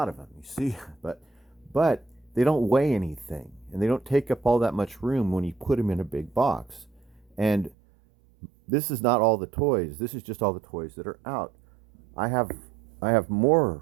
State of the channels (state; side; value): drops out; left; at 7.8 s